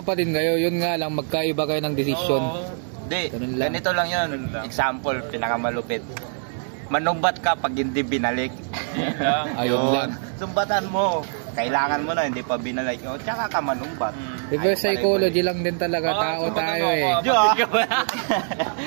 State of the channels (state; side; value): silent; left; digital silence